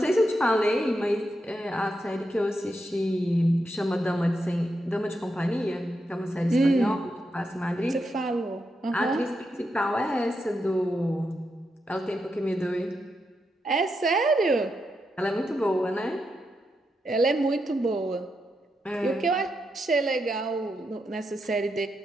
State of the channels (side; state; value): both; normal; correlation 0.84